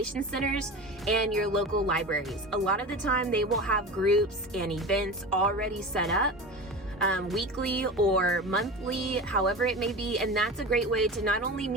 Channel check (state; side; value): normal; both; correlation 0.30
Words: centers and your local libraries. A lot of the time they will have groups and events already set up, weekly or monthly, however it may be, and that's a great way to not only